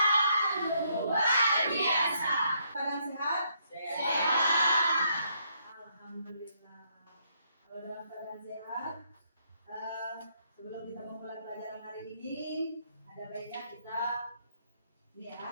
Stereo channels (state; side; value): inverted; both; correlation -0.73